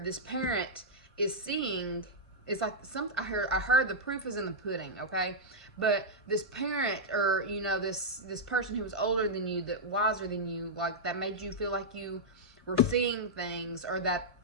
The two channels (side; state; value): both; normal; correlation -0.06